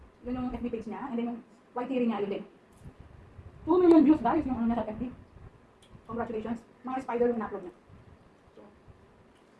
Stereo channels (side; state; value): both; identical; correlation 1.00